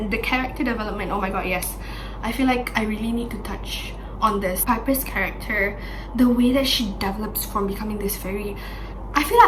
the character development, oh my god, yes. I feel like I really need to touch on this. Piper's character, the way that she develops from becoming this very, I feel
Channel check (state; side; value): identical; both; correlation 1.00